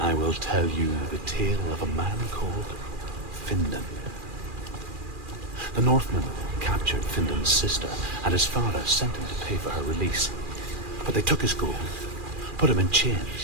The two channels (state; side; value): late; left; 2.4 ms